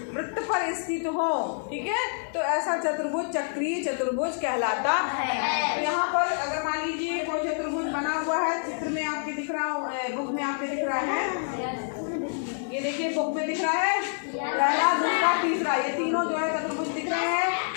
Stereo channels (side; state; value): right; silent; digital silence